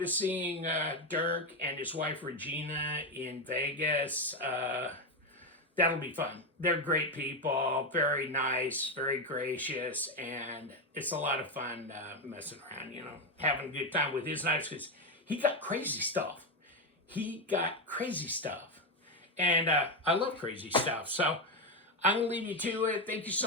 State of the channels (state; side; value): normal; both; correlation 0.09